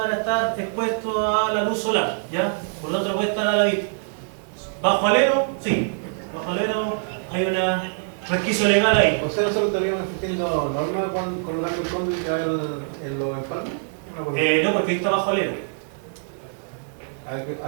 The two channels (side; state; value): left; silent; digital silence